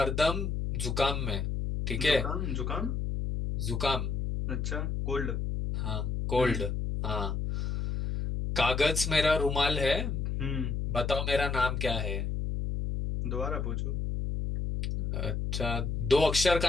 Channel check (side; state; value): left; noise; hum, 1 dB below the sound